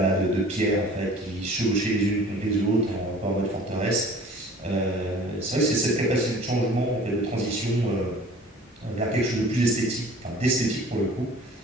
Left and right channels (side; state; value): both; normal; correlation 0.47